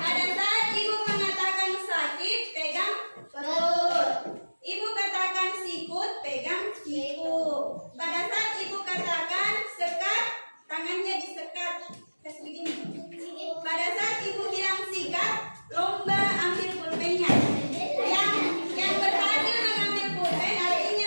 saat ibu mengatakan sakit, pegang perut. Ibu katakan sikut, pegang siku. Pada saat ibu katakan sekat, tangannya disekat. Kasih begini. Pada saat ibu bilang sikat, lomba ambil pulpennya. Yang berhasil mengambil pulpen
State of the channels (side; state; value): both; inverted; correlation -1.00